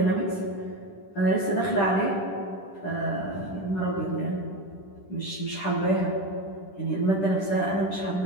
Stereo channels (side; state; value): right; late; 10 ms